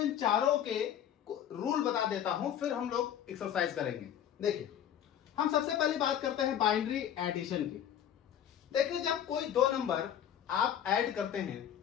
चारों के रूल बता देता हूं, फिर हम लोग एक्सरसाइज करेंगे। देखिए, हम सबसे पहली बात करते हैं बाइनरी एडिशन की। देखिए, जब कोई 2 नंबर आप ऐड करते हैं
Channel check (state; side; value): quieter; right; 9.9 dB